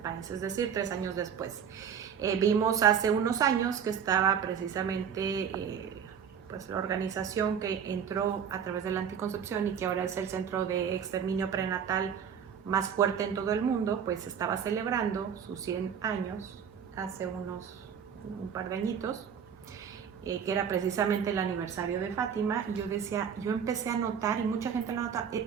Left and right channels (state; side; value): quieter; left; 7.7 dB